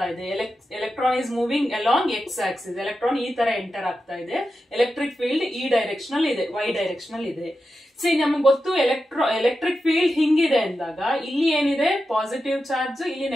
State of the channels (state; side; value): normal; both; correlation 0.90